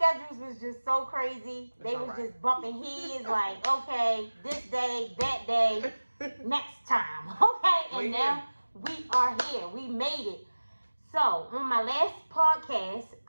was just so crazy. They was just bumping heads okay, this day, that day, next time, okay? And now we are here. We made it. So on my last podcast,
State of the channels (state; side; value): inverted; both; correlation -1.00